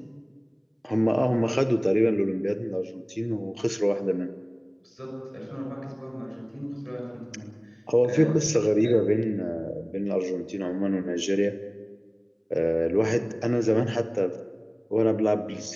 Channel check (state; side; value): identical; both; correlation 1.00